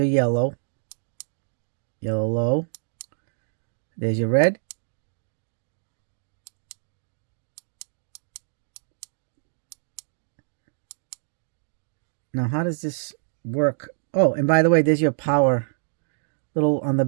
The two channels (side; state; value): left; silent; digital silence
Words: yellow. Yellow low. There's your red. Now, how does this work? Oh, and by the way, there's your power little on the